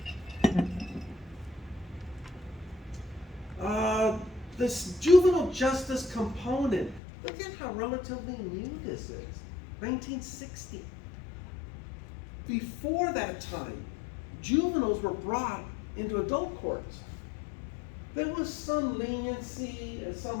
This juvenile justice component, look at how relatively new this is. 1960. Before that time, juveniles were brought into adult courts. There was some leniency and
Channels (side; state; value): right; drops out; at 7.0 s